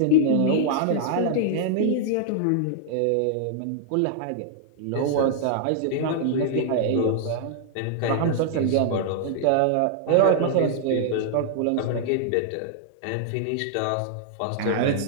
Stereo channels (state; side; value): different; both; correlation -0.01